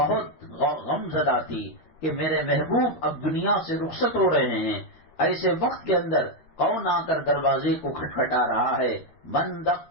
غم زدہ تھی کہ میرے محبوب اب دنیا سے رخصت ہو رہے ہیں۔ ایسے وقت کے اندر کون آ کر دروازے کو کھٹکھٹا رہا ہے؟ من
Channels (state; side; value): late; right; 13 ms